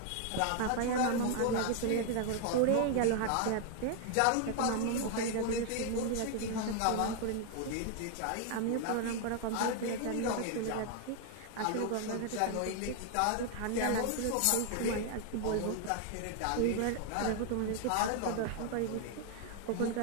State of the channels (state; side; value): different; both; correlation 0.00